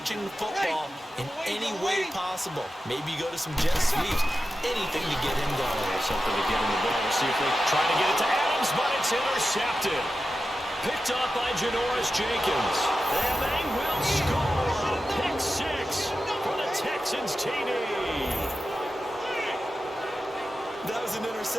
the football in any way possible. Maybe you go to some jet sweeps. Anything to get him going. Something to get him the ball. We'll see if they try to get it to Adams, but it's intercepted. Picked up by Janoris Jenkins. And they will score a pick 6 for the Texans TD. That was an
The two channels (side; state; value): both; normal; correlation 0.92